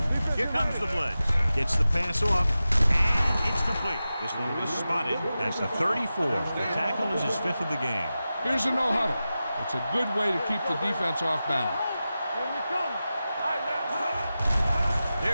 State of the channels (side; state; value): both; inverted; correlation -0.93